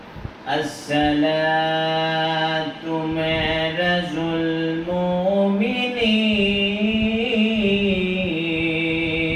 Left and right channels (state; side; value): identical; both; correlation 1.00